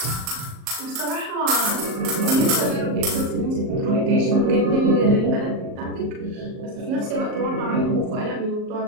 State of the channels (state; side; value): late; left; 38 ms